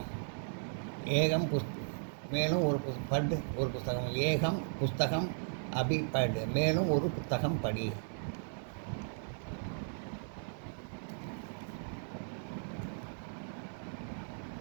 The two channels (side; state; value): left; silent; digital silence